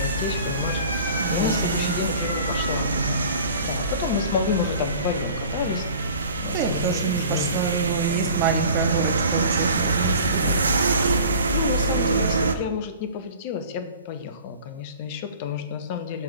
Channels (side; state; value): both; inverted; correlation -0.44